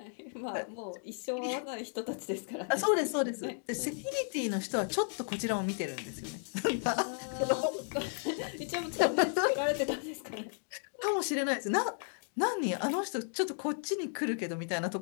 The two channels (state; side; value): silent; right; 55 dB below the other